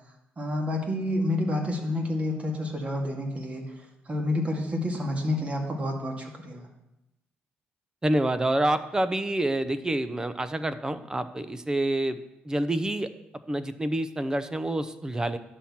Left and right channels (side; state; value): both; normal; correlation 0.85